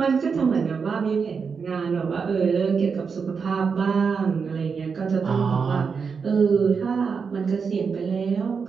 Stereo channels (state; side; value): quieter; left; 5.7 dB